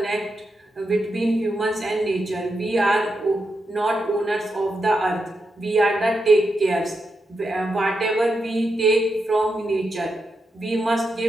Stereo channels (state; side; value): normal; both; correlation 0.86